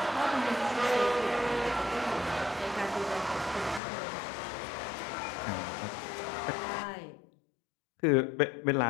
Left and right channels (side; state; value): right; drops out; at 3.8 s